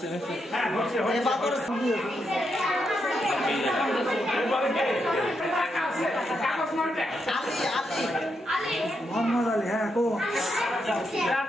মোহাম্মদ আলী হ্যাঁ কো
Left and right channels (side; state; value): both; normal; correlation 0.82